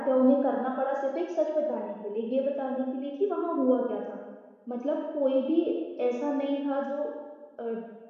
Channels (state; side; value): identical; both; correlation 1.00